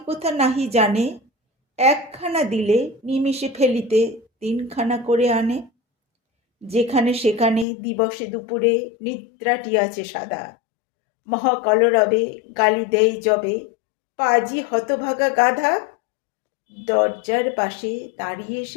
নাহি জানে। একখানা দিলে নিমিষে ফেলিতে তিনখানা করে আনে। যেখানে সেখানে দিবসে দুপুরে নিদ্রাটি আছে সাদা। মহাকলরবে গালি দেই যবে, পাজি হতভাগা গাধা। দরজার পাশে দাঁড়িয়ে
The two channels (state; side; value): drops out; right; at 7.7 s